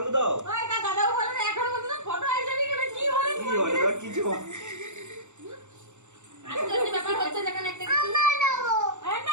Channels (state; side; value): late; left; 0.84 ms